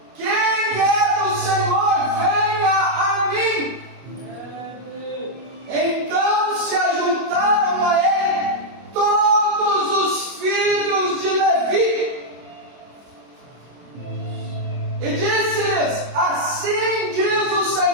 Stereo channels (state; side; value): late; left; 25 ms